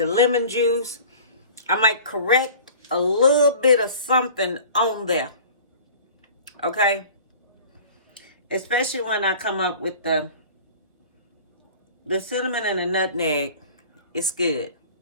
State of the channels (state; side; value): inverted; both; correlation -0.43